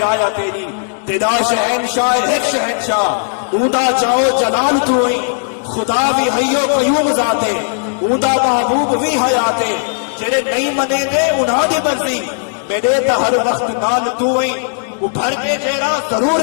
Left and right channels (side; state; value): right; silent; digital silence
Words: तेरी। तेरा शहनशाह एक शहनशाह ऊदा जाओ जलाल तू ही। खुदा भी हयो कयूम जाते ऊदा महबूब भी हयाते। जेड़े नहीं मने दे उन्हां दी मर्जी मेरे ता हर वक्त नाल तू ही। उभर के जेड़ा